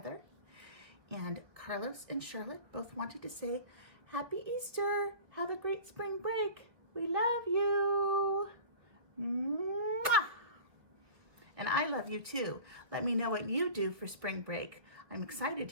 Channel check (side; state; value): left; late; 1.7 ms